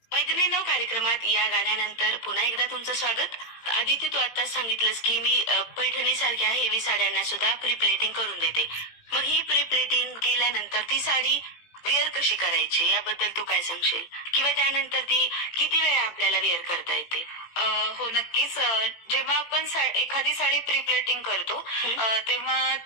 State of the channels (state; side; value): late; right; 18 ms